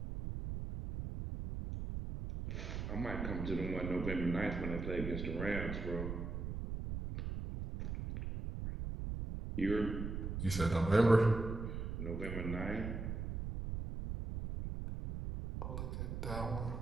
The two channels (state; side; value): noise; right; rumble, 4 dB below the sound